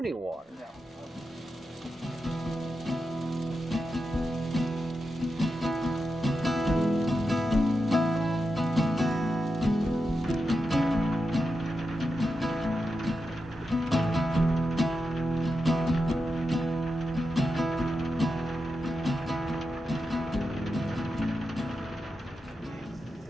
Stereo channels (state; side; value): normal; both; correlation 0.89